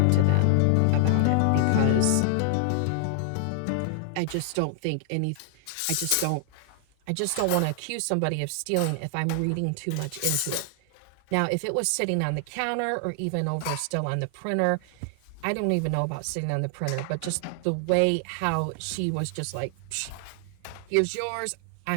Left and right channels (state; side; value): different; both; correlation 0.00